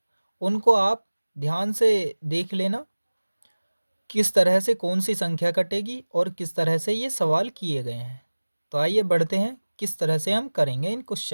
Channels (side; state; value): both; inverted; correlation -1.00